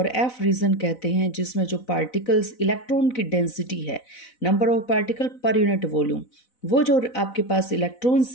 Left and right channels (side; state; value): right; late; 4.0 ms